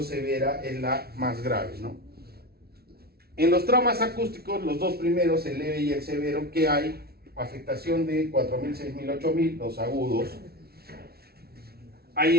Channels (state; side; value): late; left; 0.45 ms